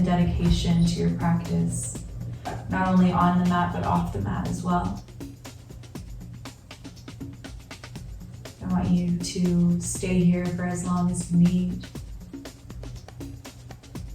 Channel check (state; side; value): identical; both; correlation 1.00